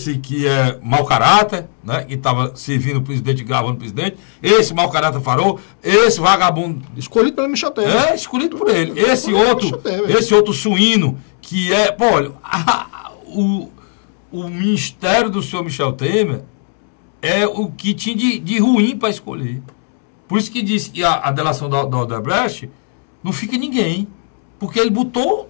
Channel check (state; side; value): silent; right; 57 dB below the other